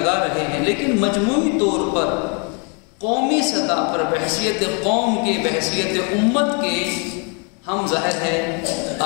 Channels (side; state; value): right; quieter; 36.5 dB